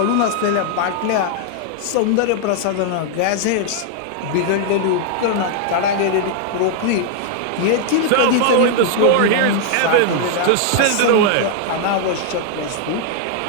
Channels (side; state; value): both; different; correlation 0.00